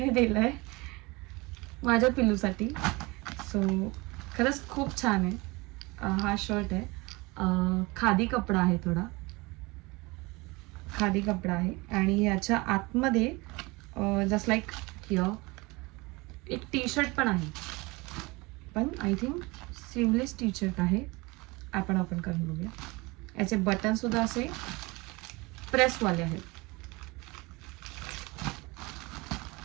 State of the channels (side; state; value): left; quieter; 24.4 dB